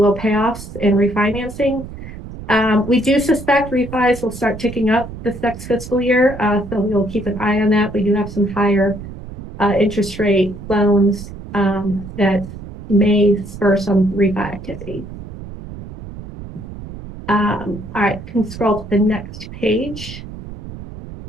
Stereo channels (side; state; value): right; noise; rumble, 12 dB below the sound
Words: payoffs and refinancing. We do suspect refis will start ticking up this next fiscal year, so we'll keep an eye on that. We do have some higher interest rate loans that may spur some refi activity. All right, can scroll to the next page.